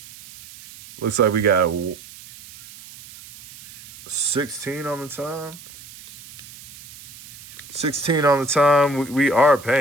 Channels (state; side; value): noise; right; hiss, 19 dB below the sound